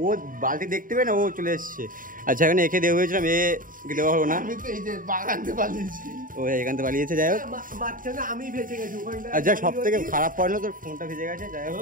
ও বালতি দেখতে পেয়ে না, ও চলে এসছে। আচ্ছা এখানে একে দেওয়া হয়েছিলাম, একে দেওয়া হলো না, ও এখান থেকে পালিয়েছে। যাই হোক, আচ্ছা সব থেকে খারাপ পড়লো তোর ফোনটা ভেজে গেছে। যাই হোক,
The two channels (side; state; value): left; late; 0.40 ms